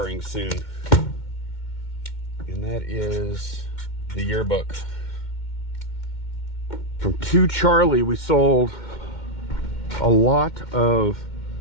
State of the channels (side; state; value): right; late; 2.1 ms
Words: soon. And that is the yearbook. From 2 Charlie, we sold a lot of